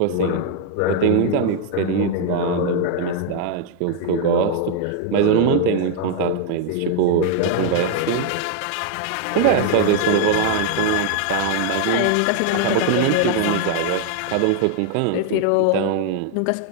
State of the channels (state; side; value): different; both; correlation 0.00